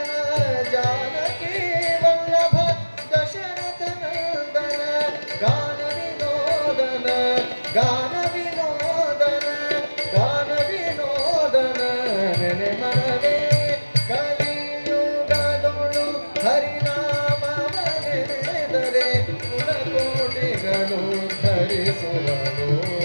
ಜಾನಕಿ ವಲ್ಲಭ ದಶರಥನಂದನ ಗಾನ ವಿನೋದನ ಗಾನ ವಿನೋದನ ಗಾನ ವಿನೋದನ ನೆನೆ ಮನವೇ ಕಲಿಯುಗದೊಳು ಹರಿನಾಮವನೆನೆದರೆ ಕುಲಕೋಟಿಗಳು ಧರಿಸುವರು.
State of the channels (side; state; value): both; inverted; correlation -1.00